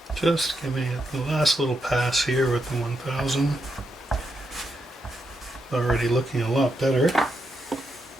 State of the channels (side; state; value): both; normal; correlation 0.82